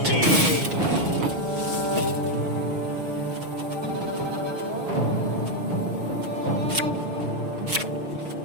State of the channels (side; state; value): left; late; 6.4 ms